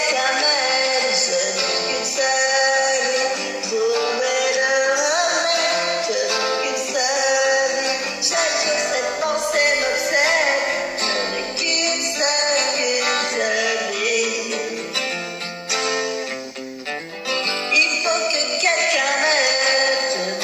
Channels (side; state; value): both; identical; correlation 1.00